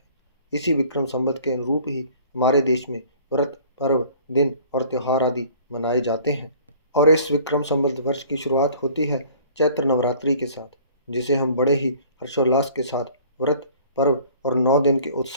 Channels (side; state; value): both; inverted; correlation -0.52